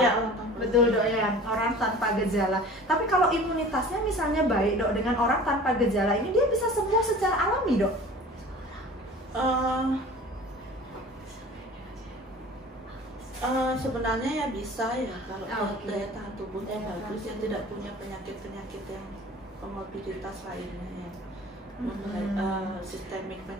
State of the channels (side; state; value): both; normal; correlation 0.43